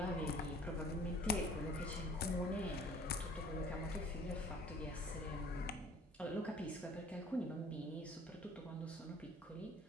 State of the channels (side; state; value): both; normal; correlation 0.52